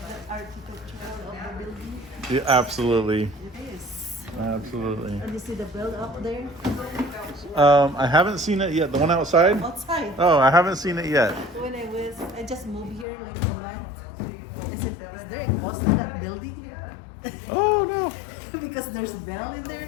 the architecture of the building? Yeah, absolutely. It is. Absolutely. And you see the build up there? I haven't seen it yet. The one outside? Outside. Oh, I haven't seen it yet. When I just moved here like a month. I said, is there a post in that building Oh no. because there's bell in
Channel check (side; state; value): right; drops out; at 13.1 s